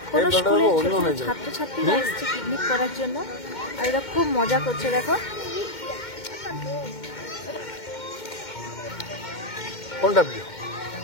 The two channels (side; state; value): right; late; 2.1 ms